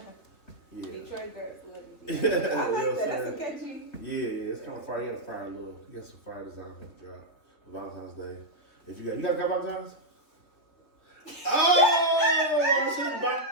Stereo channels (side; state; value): right; late; 3.4 ms